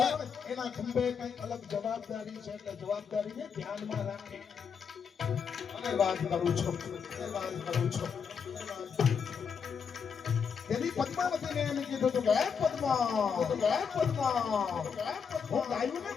એના ખંભે કઈ અલગ જવાબદારી છે. એટલે જવાબદારીને ધ્યાનમાં રાખી અને વાત કરું છું. તેની પદ્માવતીને એને કીધું હતું કે પદ્મા હું ગાયોને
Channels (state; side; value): quieter; right; 6.5 dB